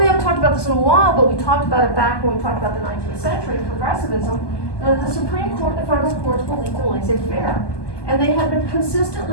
haven't talked about this in a while, but we talked about it back when we talked about the 19th century, progressivism. The Supreme Court, the federal courts believed in laissez-faire. And they have been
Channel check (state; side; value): late; right; 1.2 ms